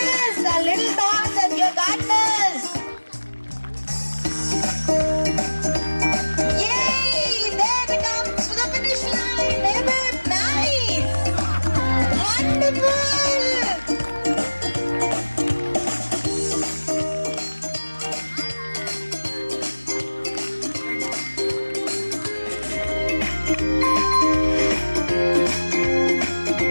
our little dogs and your gardeners. Yay! There we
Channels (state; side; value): inverted; both; correlation -1.00